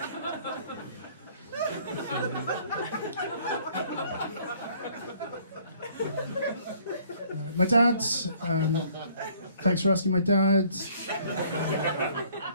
My dad, thanks for asking. My dad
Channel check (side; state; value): both; inverted; correlation -0.59